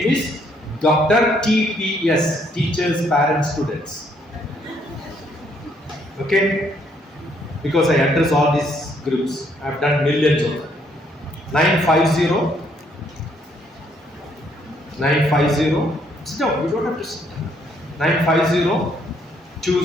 is DrTPS, Teachers, Parents, Students. Okay? Because I address all these groups. I have done millions of them. 950. Sit down, you don't have to sit down. 950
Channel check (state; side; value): normal; both; correlation 0.69